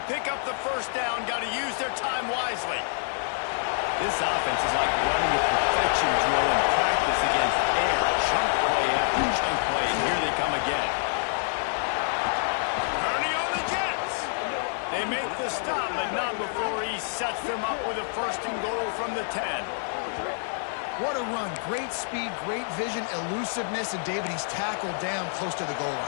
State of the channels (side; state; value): right; silent; digital silence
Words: pick up the 1st down. Got to use their time wisely. This offense is like running a perfection drill in practice against air. Chunk play after chunk play, and here they come again. They make the stop, but not before he sets them up with a 1st and goal from the 10. What a run. Great speed, great vision, elusiveness, and David, he's tackled down close to the goal